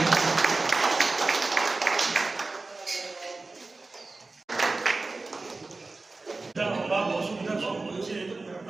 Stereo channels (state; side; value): quieter; left; 3.5 dB